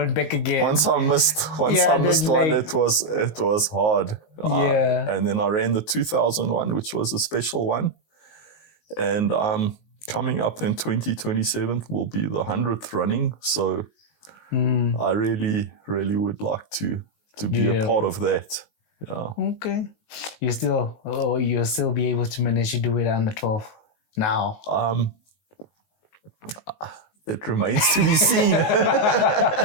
back again. Once I missed one, it was hard. And then I ran the 2001, which was a special one. And coming up in 2027 will be the 100th running. So I really, really would like to be a part of that. Yeah. Okay. You'll still be able to manage to do it on the 12th now. It remains to be seen.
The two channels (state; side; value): late; right; 19 ms